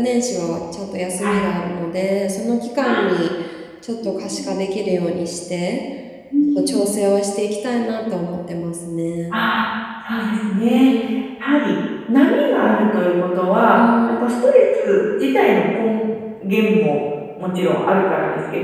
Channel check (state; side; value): identical; both; correlation 1.00